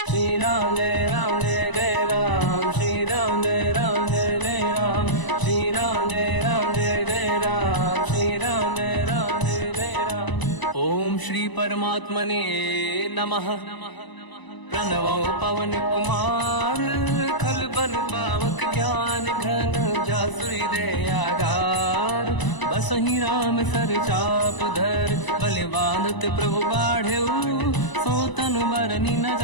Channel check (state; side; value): late; right; 1.0 ms